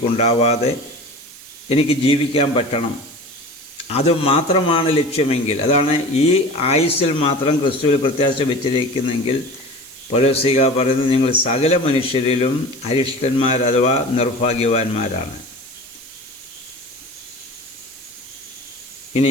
എനിക്ക് ജീവിക്കാൻ പറ്റണം. അതുമാത്രമാണ് ലക്ഷ്യമെങ്കിൽ, അതാണ് ഈ ആയുസ്സിൽ മാത്രം ക്രിസ്തുവിൽ പ്രത്യാശ വെച്ചിരിക്കുന്നെങ്കിൽ പൗലോസ്ലീഹ പറയുന്നത്, നിങ്ങൾ സകല മനുഷ്യരിലും അരിഷ്ടന്മാർ അഥവാ നിർഭാഗ്യവാന്മാരാണ്.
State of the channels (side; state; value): right; noise; hiss, 18 dB below the sound